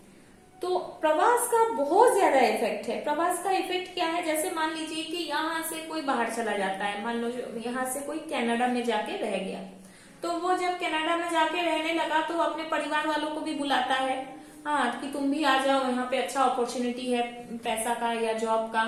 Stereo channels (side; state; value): both; identical; correlation 1.00